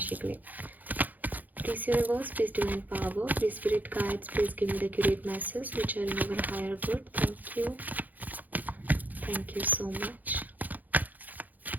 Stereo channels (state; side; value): late; left; 0.082 ms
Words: के लिए। Please universe, please divine power, please spirit guides, please give me the accurate message which are in our higher good. Thank you. Thank you so much.